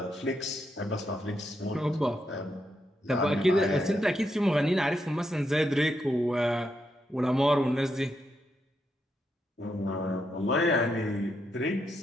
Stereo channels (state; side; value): normal; both; correlation 0.82